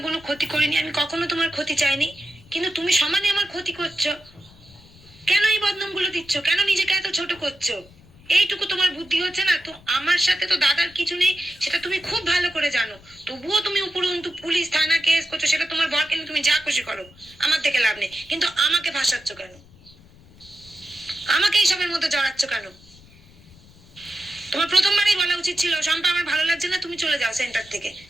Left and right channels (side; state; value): left; noise; rumble, 25 dB below the sound